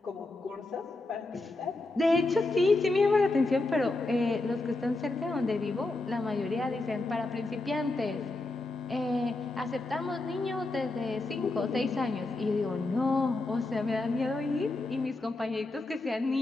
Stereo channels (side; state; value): right; quieter; 3.0 dB